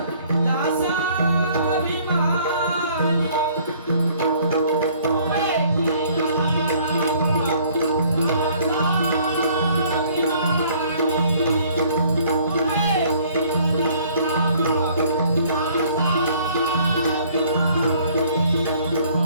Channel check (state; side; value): inverted; both; correlation -0.58